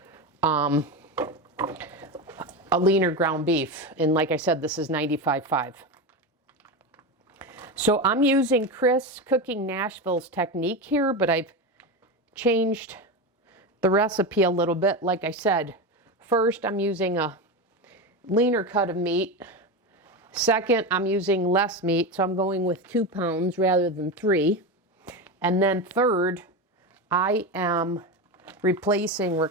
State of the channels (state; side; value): normal; both; correlation 0.18